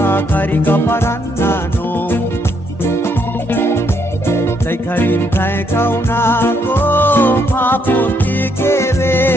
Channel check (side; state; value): both; normal; correlation 0.73